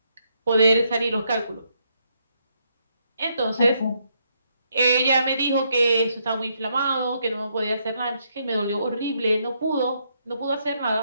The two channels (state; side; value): inverted; both; correlation -0.75